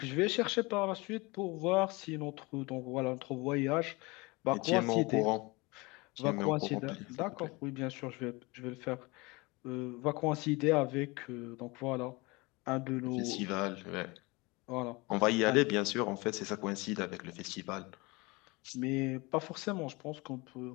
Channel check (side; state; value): right; quieter; 25.0 dB